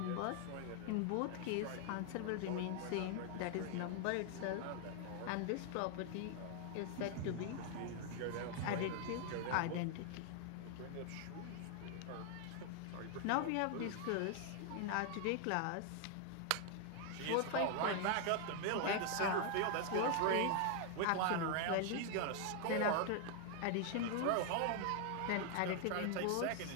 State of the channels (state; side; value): different; both; correlation 0.00